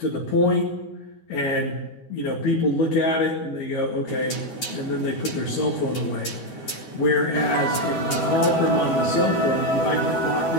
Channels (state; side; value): late; right; 12 ms